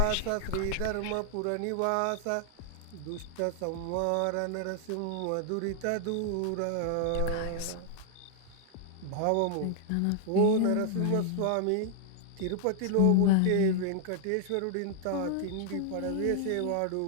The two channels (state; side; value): different; both; correlation 0.00